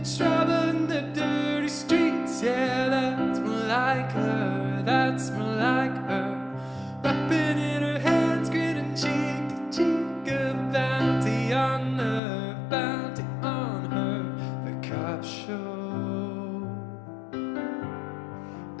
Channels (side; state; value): right; drops out; at 12.2 s